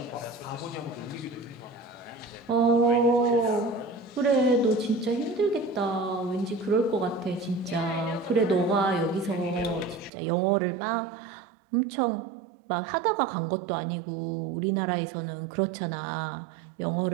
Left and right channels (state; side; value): drops out; left; at 10.1 s